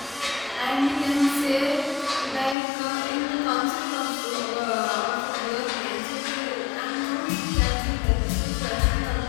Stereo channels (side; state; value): right; drops out; at 2.6 s